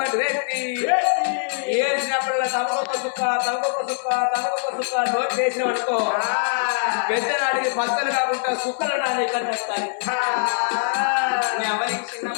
పెట్టి ఏసినప్పుడల్లా తమకొక సుక్క నోట్ వేసిన అనుకో పెద్ద నాటికి పచ్చలు కాకుండా సుక్కలు నాని కట్టాలి.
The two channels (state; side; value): silent; right; 58 dB below the other